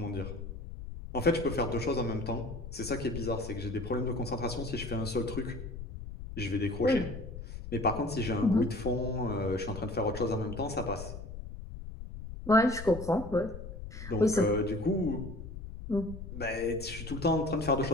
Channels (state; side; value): noise; left; rumble, 10 dB below the sound